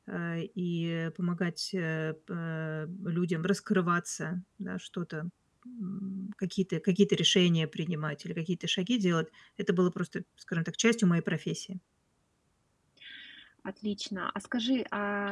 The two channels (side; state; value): both; identical; correlation 1.00